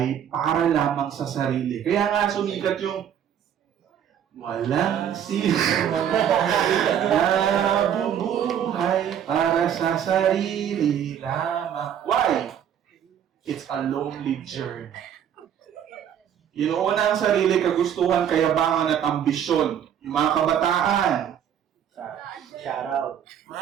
para lamang sa sarili. Kaya nga sumikat yung walang sino nabubuhay para sa sarili lamang. Why? It's a lonely journey. Inuuna ang sarili, kagustuhan, kayabangan at ambisyon. Yung mga kabataan. Shout out.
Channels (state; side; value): quieter; left; 9.2 dB